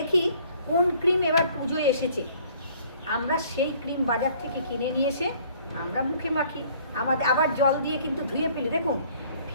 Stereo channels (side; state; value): both; inverted; correlation -0.57